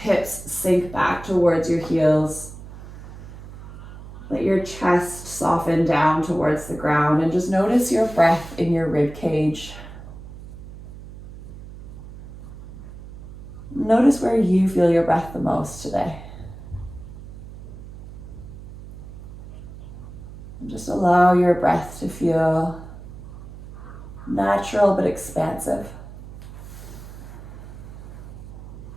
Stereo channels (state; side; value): noise; right; hum, 14 dB below the sound